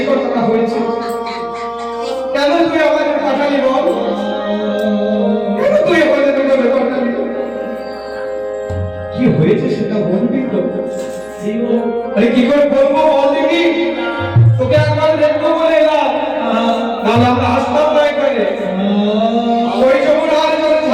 কথাটা হয়েছে। কেন তুই আমাদের পাঠালি বল? কেন তুই আমাদের পাঠালি? কি হয়েছে সেটা বলবি তো? আরে কি করে বলবো বল দেখি? তোকে একবার দেখবো বলে এলাম, নাহলে আমরা আসতাম না এখানে। ওই যমুনার জলে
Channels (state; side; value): noise; right; hum, 29 dB below the sound